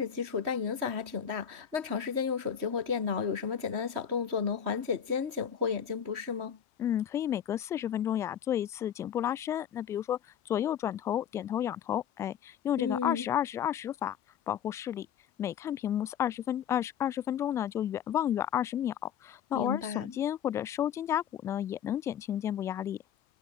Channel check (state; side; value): quieter; right; 8.7 dB